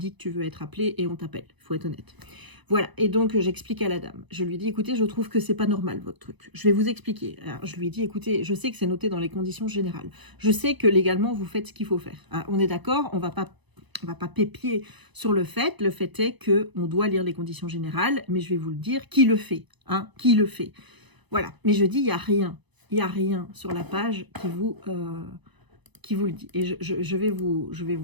que tu veux être appelé et on t'appelle, il faut être honnête. Voilà, et donc j'explique à la dame. Je lui dis, écoutez, je trouve que c'est pas normal votre truc. Je vais vous expliquer. Alors, je lui dis, écoutez, je sais que c'est noté dans les conditions générales. Je sais que légalement, vous faites ce qu'il faut faire. Ah, on est d'accord, on va pas pépier sur le fait. Le fait est qu'on doit lire les conditions générales, mais je vais vous le dire, qui le fait, hein, qui le fait. Voilà, mais je dis, il n'y a rien sur la page qui vous le dit. Et je vais vous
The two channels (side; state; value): left; late; 1.0 ms